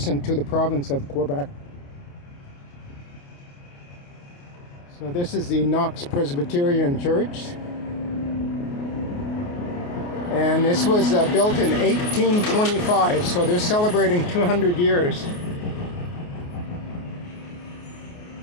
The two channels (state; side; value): late; right; 28 ms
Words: to the province of Quebec. So this is the Knox Presbyterian Church. And this was built in 1825, so they're celebrating 200 years.